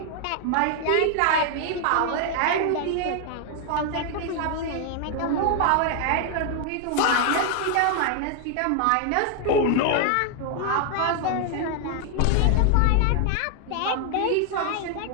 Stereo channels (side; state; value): both; different; correlation 0.00